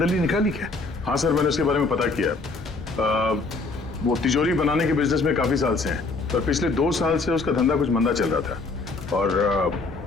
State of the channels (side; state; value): right; quieter; 3.8 dB